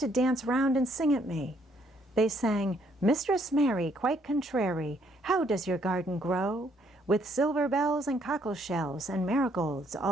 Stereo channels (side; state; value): both; normal; correlation 0.68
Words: to dance round and sing at me. They sang, Mistress Mary quite contrary, how does your garden grow? With silver bells and cockle shells and marigolds